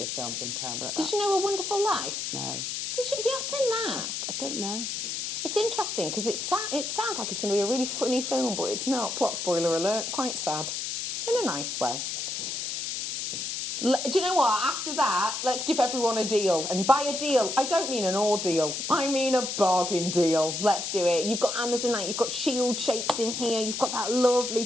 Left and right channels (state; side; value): noise; left; hiss, 4 dB below the sound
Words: the films. I'm terrible at that. Did you know A Wonderful Life? No. Have you not seen that? I don't know. It's interesting because it sounds like it's going to be a really funny film, but it's not. Plot spoiler alert. Quite sad. In a nice way. Do you know what? After that, let's give everyone a deal. And by a deal, I don't mean an ordeal. I mean a bargain deal. Let's do it. You've got Amazonite. You've got shield shapes in here. You've got that